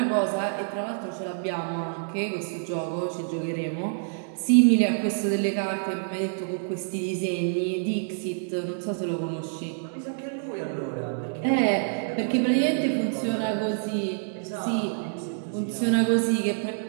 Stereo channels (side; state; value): left; silent; digital silence